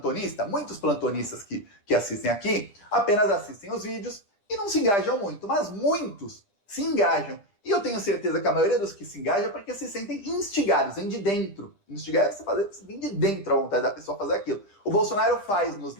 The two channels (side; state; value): right; late; 10 ms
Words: muitos plantonistas que assistem aqui, apenas assistem os vídeos e não se engajam muito, mas muitos se engajam. E eu tenho certeza que a maioria dos que se engajam é porque se sentem instigados, vem de dentro. Instigar é você vem de dentro a vontade da pessoa fazer aquilo. O Bolsonaro faz nos